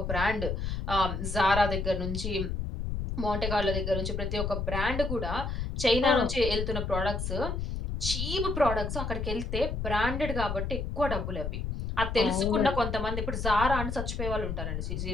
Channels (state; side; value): noise; left; rumble, 3 dB below the sound